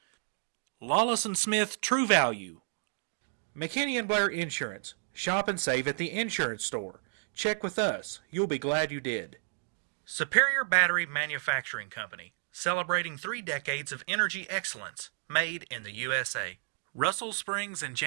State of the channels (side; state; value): left; silent; digital silence